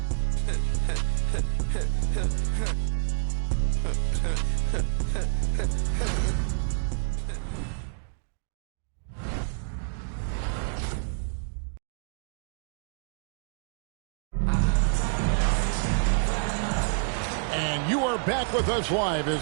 Back with us live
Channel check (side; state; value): left; silent; 59 dB below the other